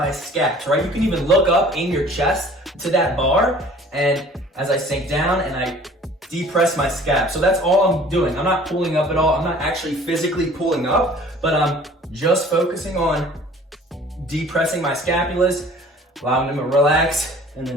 scaps, right? You can even look up, aim your chest to that bar, and as I sink down and I depress my scap. So that's all I'm doing. I'm not pulling up at all. I'm not actually physically pulling up, but I'm just focusing on depressing my scapulas, allowing them to relax, and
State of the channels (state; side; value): normal; both; correlation 0.50